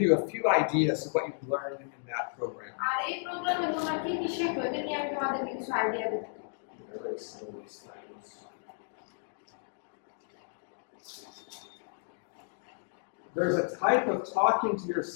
you a few ideas of what you've learned in that program. আর এই প্রোগ্রামে তোমরা কি কি শেখো এটা নিয়ে আমি তোমাদেরকে কিছু আইডিয়া দেব। There's a type of talking to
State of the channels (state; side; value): silent; right; digital silence